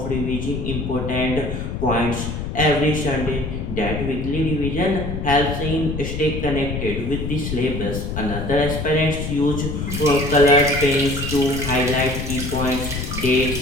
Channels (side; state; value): left; noise; rumble, 4 dB below the sound